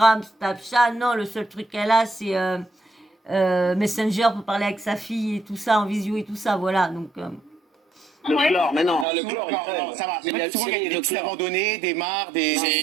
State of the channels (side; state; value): left; drops out; at 9.1 s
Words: Snapchat, non, le seul truc qu'elle a, c'est Messenger pour parler avec sa fille et tout ça, en visio et tout ça, voilà. Donc, Le chlore, mais non. Le chlore, non, ça va. Mais souvent, il y a des piscines abandonnées, des mares, des.